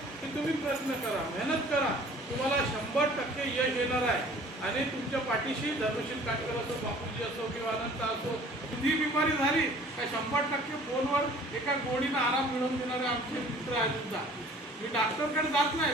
की तुम्ही प्रयत्न करा, मेहनत करा. तुम्हाला 100% यश येणार आहे. आणि तुमच्या पाठीशी धर्मशील काटकर असो, बापूजी असो किंवा अनंत असो, कुठली बिमारी झाली काय 100% फोनवर एका गोडीनं आराम मिळवून देणारे आमचे मित्र आहेत सुद्धा. मी डॉक्टरकडे जात नाही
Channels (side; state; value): both; normal; correlation 0.50